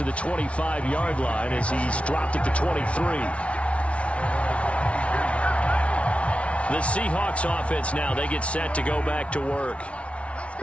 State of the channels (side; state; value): right; late; 0.062 ms